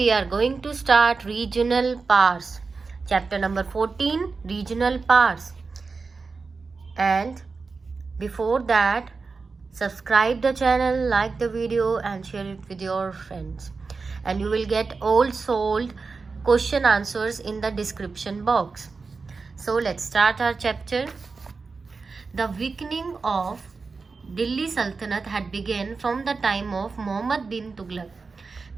are going to start regional powers. Chapter number 14, regional powers. And before that, subscribe the channel, like the video and share it with your friends. And you will get all solved question answers in the description box. So let's start our chapter. The weakening of Delhi सल्तनत had began from the time of Mohammad bin Tughlaq.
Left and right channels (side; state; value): left; quieter; 4.4 dB